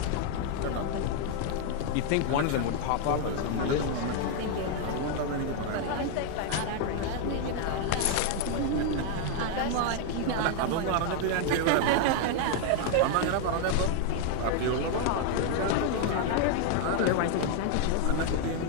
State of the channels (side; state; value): both; different; correlation 0.00